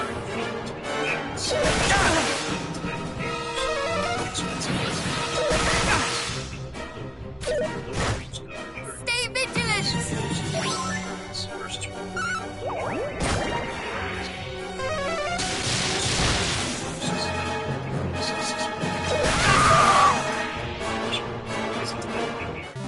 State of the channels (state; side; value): identical; both; correlation 1.00